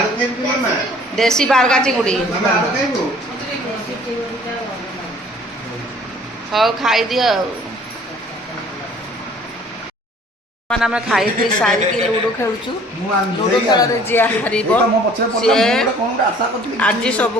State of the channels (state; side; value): normal; both; correlation 0.53